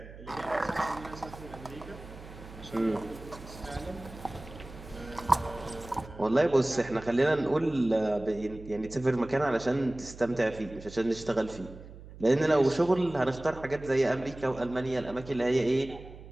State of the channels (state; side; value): noise; right; hum, 16 dB below the sound